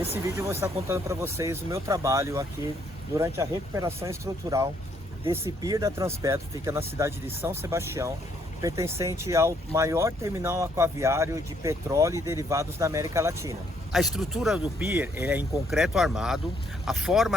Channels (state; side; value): normal; both; correlation 0.70